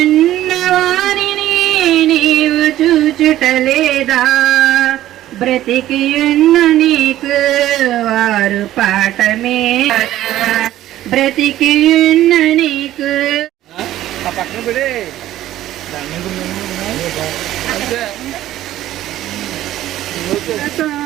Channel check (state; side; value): quieter; left; 13.8 dB